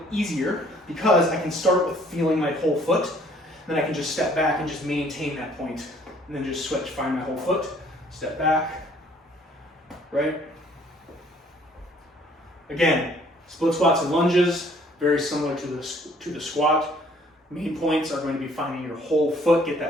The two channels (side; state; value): both; normal; correlation 0.59